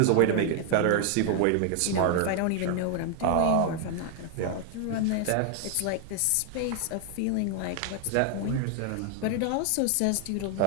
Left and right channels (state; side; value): different; both; correlation 0.00